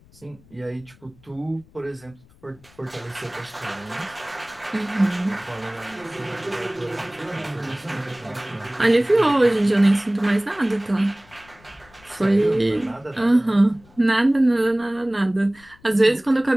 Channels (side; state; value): left; noise; rumble, 27 dB below the sound